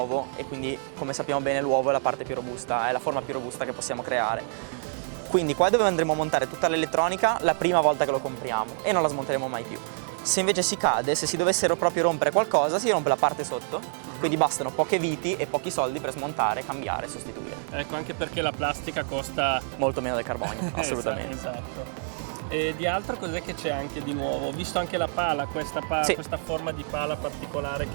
e quindi come sappiamo bene l'uovo è la parte più robusta, è la forma più robusta che possiamo creare. Quindi qua dove andremo a montare tutta l'elettronica la prima volta che lo compriamo e non la smonteremo mai più. Se invece si cade, se si dovessero proprio rompere qualcosa, si rompe la parte sotto, quindi bastano poche viti e pochi soldi per smontare, cambiare e sostituire. Ecco, anche perché la plastica costa molto meno del carbonio, assolutamente. Esatto. E di altro cos'è che c'è anche di nuovo? Ho visto anche la pala, questa forma di pala particolare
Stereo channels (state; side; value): silent; left; 60 dB below the other